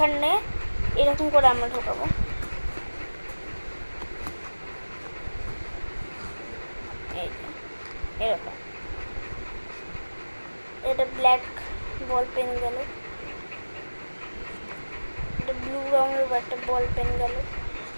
এরকম করে আমরা ঢোকাবো। এরকম এটা ব্ল্যাক বল পেন গেল, এটা ব্লু রঙের একটা বল পেন গেল,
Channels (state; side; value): inverted; both; correlation -1.00